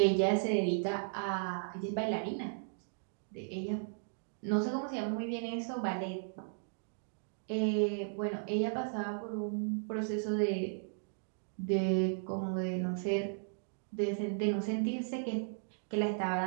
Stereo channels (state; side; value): silent; left; digital silence